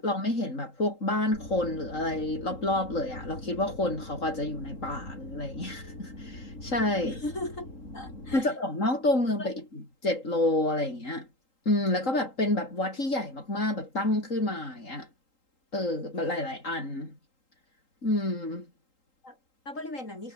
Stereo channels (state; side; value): late; right; 3.8 ms